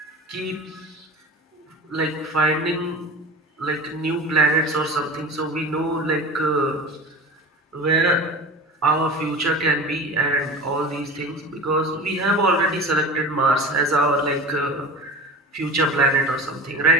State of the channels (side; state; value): both; normal; correlation 0.34